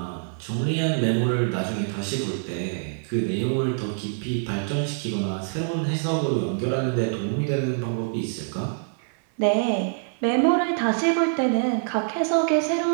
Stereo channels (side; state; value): left; silent; 62 dB below the other